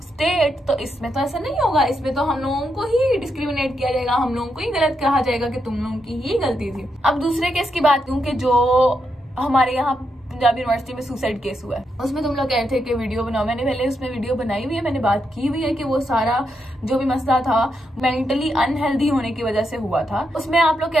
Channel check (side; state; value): both; normal; correlation 0.82